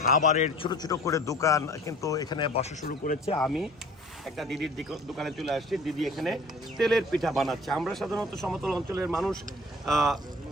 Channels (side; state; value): both; normal; correlation 0.47